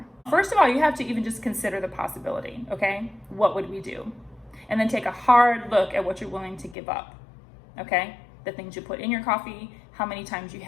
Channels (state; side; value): drops out; right; at 6.8 s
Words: First of all, you have to even just consider the possibility, okay? What would we do? And then take a hard look at what you're willing to give up, okay? The things you put in your coffee, how many times you